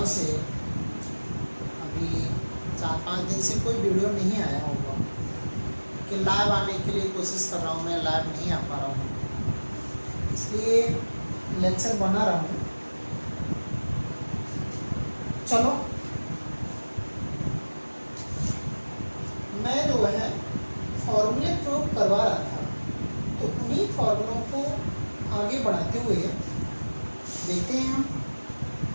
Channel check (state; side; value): inverted; both; correlation -1.00